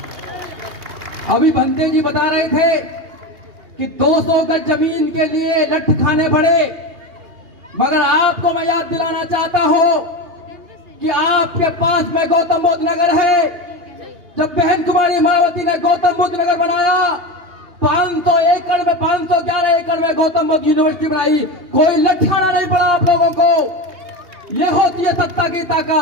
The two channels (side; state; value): left; late; 2.8 ms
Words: अभी बंते जी बता रहे थे कि 200 गज जमीन के लिए लठ खाने पड़े, मगर आपको मैं याद दिलाना चाहता हूं कि आपके पास में गौतम बुद्ध नगर है। जब बहन कुमारी मायावती ने गौतम बुद्ध नगर बनाया, 500 एकड़ में 511 एकड़ में गौतम बुद्ध यूनिवर्सिटी बनाई, कोई लठाना नहीं पड़ा आप लोगों को। यह होती है सत्ता की